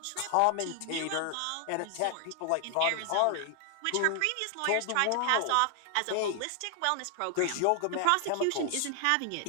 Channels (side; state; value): both; different; correlation 0.00